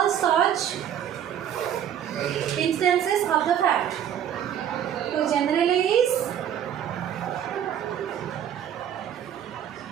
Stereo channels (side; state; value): left; quieter; 9.8 dB